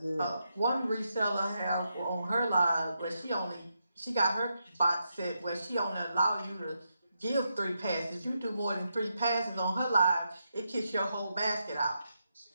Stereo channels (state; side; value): inverted; both; correlation -0.83